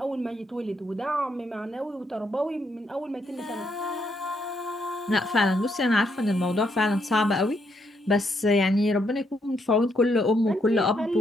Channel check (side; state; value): both; normal; correlation 0.76